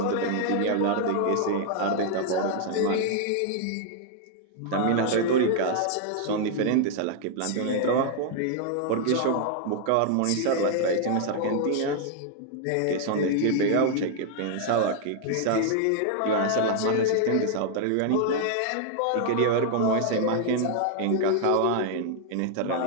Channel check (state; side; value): different; both; correlation 0.00